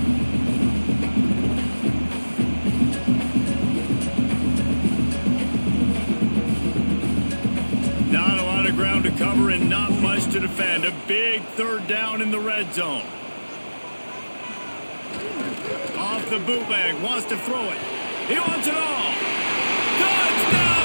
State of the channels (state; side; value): inverted; both; correlation -1.00